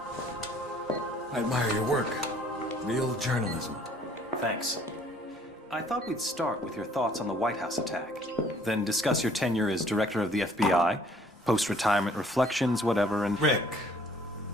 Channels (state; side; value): normal; both; correlation 0.58